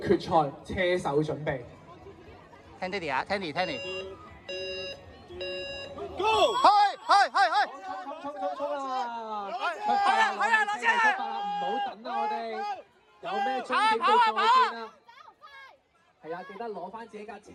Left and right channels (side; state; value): both; identical; correlation 1.00